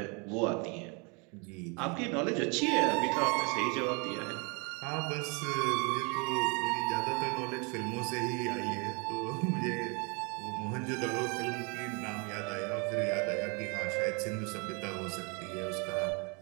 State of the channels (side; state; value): left; quieter; 32.2 dB